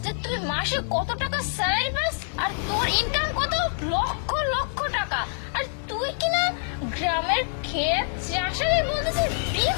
যে তুই মাসে কত টাকা স্যালারি পাস আর তোর ইনকাম কত? লক্ষ লক্ষ টাকা। আর তুই কিনা গ্রামের ক্ষেত চাষাকে বলতেছিস বিয়ে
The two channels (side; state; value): right; silent; digital silence